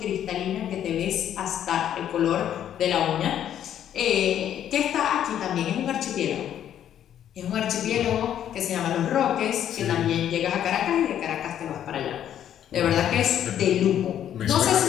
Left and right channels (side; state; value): right; quieter; 10.3 dB